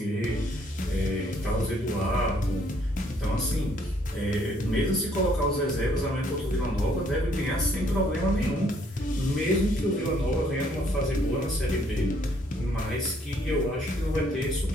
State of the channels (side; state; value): both; normal; correlation 0.66